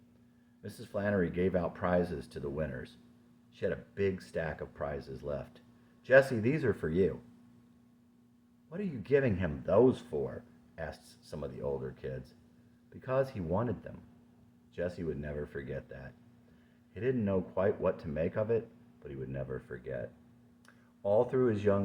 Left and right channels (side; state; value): both; identical; correlation 1.00